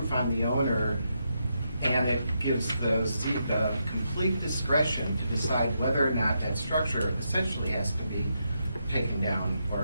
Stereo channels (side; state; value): both; inverted; correlation -0.82